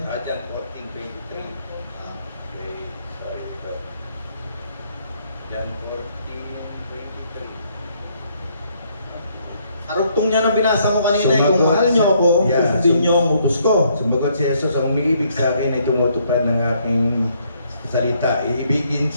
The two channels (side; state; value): both; inverted; correlation -0.69